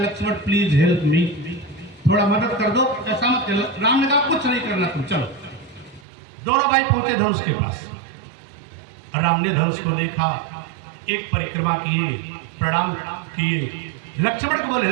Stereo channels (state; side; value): drops out; left; at 6.0 s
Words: प्लीज हेल्प मी, थोड़ा मदद कर दो, ऐसा मत करो। राम ने कहा, कुछ नहीं करना, तुम चलो। दोनों भाई पहुंचे धनुष के पास। राम ने धनुष को देखा, एक परिक्रमा किए, प्रणाम किए। लक्ष्मण को बोले,